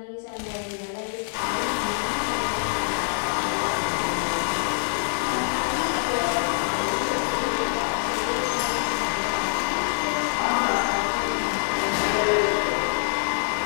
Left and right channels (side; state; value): right; silent; digital silence